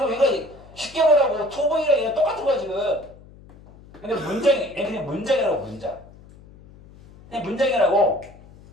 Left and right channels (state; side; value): noise; left; hum, 22 dB below the sound